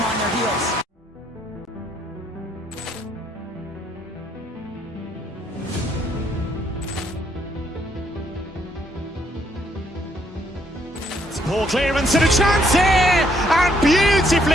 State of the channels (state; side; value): normal; both; correlation 0.70